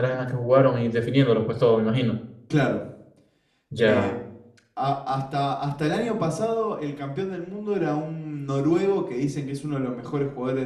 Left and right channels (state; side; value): identical; both; correlation 1.00